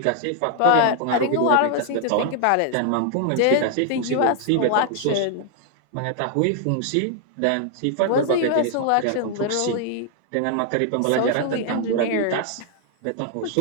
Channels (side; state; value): both; different; correlation 0.00